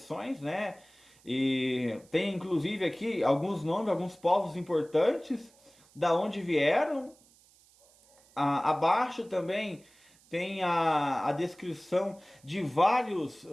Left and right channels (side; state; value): right; noise; hiss, 29 dB below the sound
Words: né? E tem inclusive aqui alguns nomes, alguns povos importantes, da onde vieram. Abaixo também tem a descrição de vários